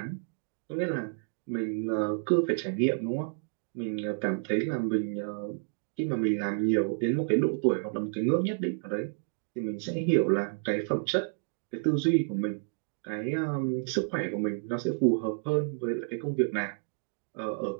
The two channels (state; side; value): silent; left; digital silence